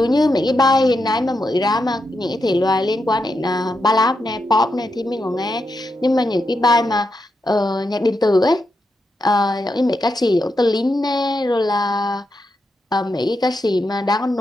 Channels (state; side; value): normal; both; correlation 0.85